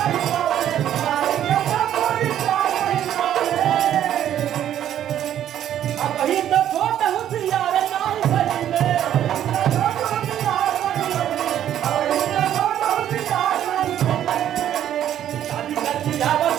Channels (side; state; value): left; quieter; 10.9 dB